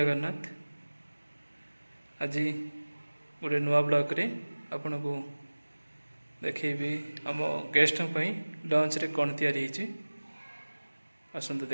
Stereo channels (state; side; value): inverted; both; correlation -1.00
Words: आज गोटे नुआ ब्लॉग रे आपन को देखेबी आम गेस्ट लंच रे कौन तैयारी होती आसतु